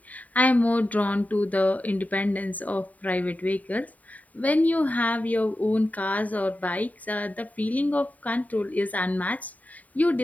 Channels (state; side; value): late; right; 0.072 ms